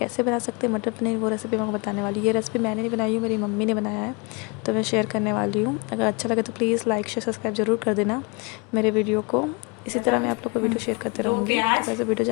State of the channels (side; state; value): right; quieter; 30.5 dB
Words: बना सकते हैं मटर पनीर, वो रेसिपी मैं आपको बताने वाली हूँ। ये रेसिपी मैंने नहीं बनाई हूँ, मेरी मम्मी ने बनाया है, तो मैं शेयर करने वाली हूँ। अगर अच्छा लगे तो प्लीज़ लाइक शेयर सब्सक्राइब ज़रूर कर देना मेरे वीडियो को। इसी तरह मैं आप लोग को वीडियो शेयर करते रहूँगी। तो वैसे वीडियो